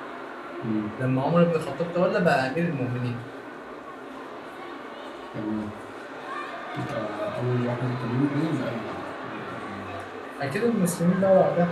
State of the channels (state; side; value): identical; both; correlation 1.00